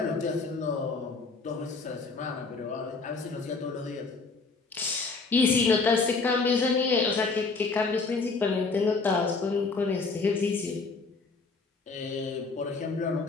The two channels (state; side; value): quieter; right; 4.2 dB